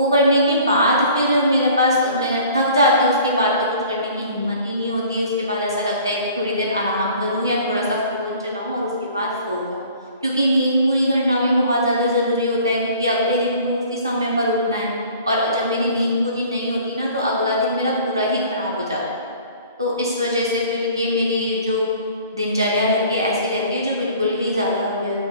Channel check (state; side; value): inverted; both; correlation -0.50